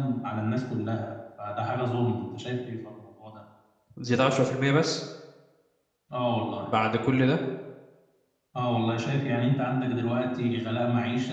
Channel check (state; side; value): identical; both; correlation 1.00